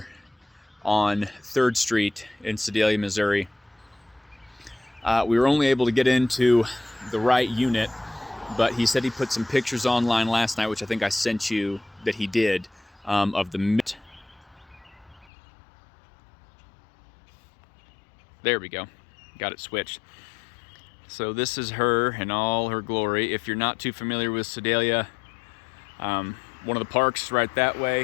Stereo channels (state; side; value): drops out; right; at 15.2 s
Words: on 3rd Street in Sedalia, Missouri. We were only able to get into the right unit, but he said he put some pictures online last night, which I think I sent you that he did, of the... There we go. Got it switched. So this is her in all her glory. If you're not too familiar with Sedalia, one of the parks right that way.